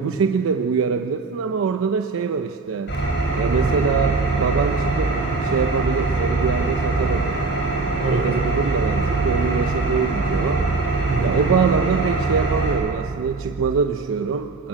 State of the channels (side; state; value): left; quieter; 4.0 dB